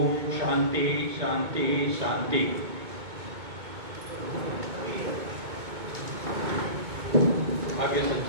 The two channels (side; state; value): left; late; 2.2 ms